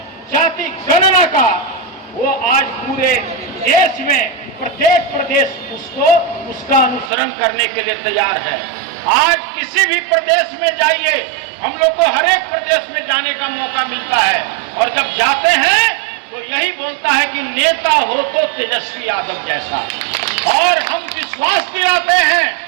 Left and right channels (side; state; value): left; drops out; at 7.1 s